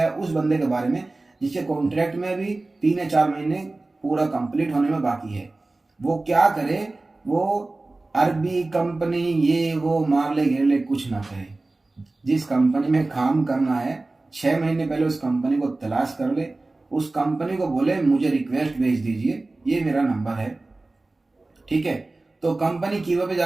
उस बंदे के बारे में जिसके कॉन्ट्रैक्ट में भी 3 या 4 महीने पूरा कंप्लीट होने में बाकी है। वो क्या करे, वो अरबी कंपनी ये वो मार ले घेर ले कुछ ना करे, जिस कंपनी में काम करना है 6 महीने पहले उस कंपनी को तलाश कर ले, उस कंपनी को बोले मुझे रिक्वेस्ट भेज दीजिए, ये मेरा नंबर है, ठीक है। तो कंपनी कीवर पे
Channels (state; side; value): quieter; left; 3.1 dB